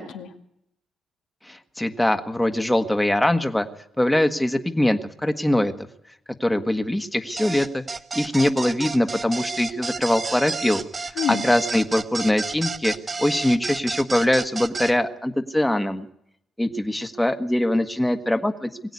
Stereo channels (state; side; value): normal; both; correlation 0.97